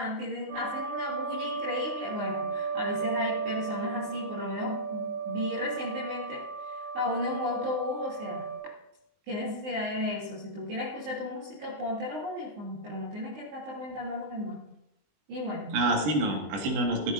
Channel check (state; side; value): late; left; 19 ms